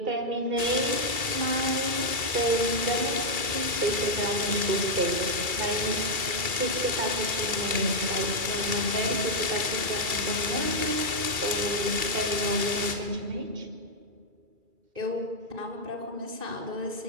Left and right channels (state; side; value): late; left; 2.3 ms